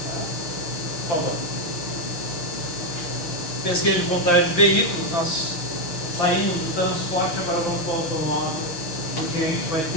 Tá? Por favor. Pesquisa de contagem de veículos, nós saímos do transporte, agora vamos para o automóvel, porque a gente vai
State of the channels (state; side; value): late; right; 6.2 ms